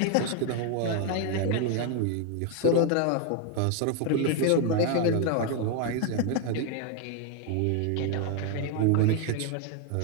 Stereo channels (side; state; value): both; different; correlation 0.01